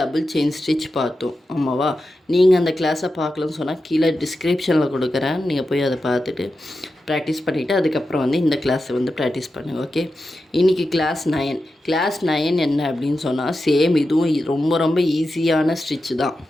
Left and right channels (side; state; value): both; normal; correlation 0.91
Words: செயின் ஸ்டிச் பார்த்தோம், ஆமாவா? நீங்கள் அந்த கிளாஸை பார்க்கலன்னு சொன்னால் கீழே டிஸ்கிரிப்ஷனில் கொடுக்குறேன், நீங்கள் போய் அதை பார்த்துட்டு ப்ராக்டிஸ் பண்ணிவிட்டு அதுக்கப்புறம் இந்த கிளாஸை ப்ராக்டிஸ் பண்ணுங்கள். ஓகே, இன்றைக்கி கிளாஸ் 9 என்ன அப்படின்னு சொன்னால் சேம் இதுவும் ரொம்ப ரொம்ப ஈஸியான ஸ்டிச் தான்.